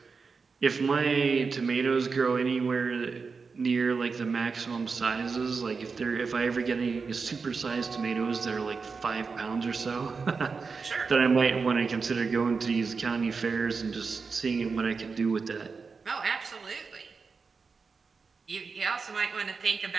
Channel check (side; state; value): left; quieter; 4.9 dB